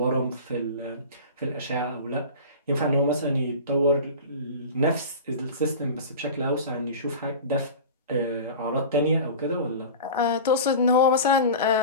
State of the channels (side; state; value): both; inverted; correlation -0.33